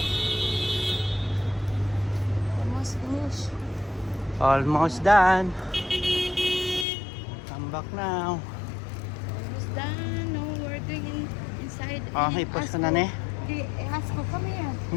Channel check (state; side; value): drops out; right; at 6.9 s